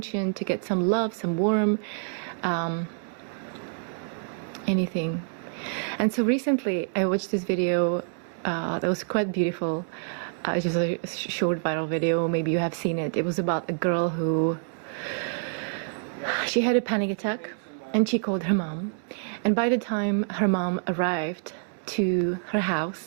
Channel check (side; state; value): left; silent; 60 dB below the other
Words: to get some love, some warmth, anything. And so recently I watched this video that was quite beautiful. It's just a short viral video, maybe you have seen it. It was about a girl who, she had a panic attack and she called her mom. And by the time her mom arrived to her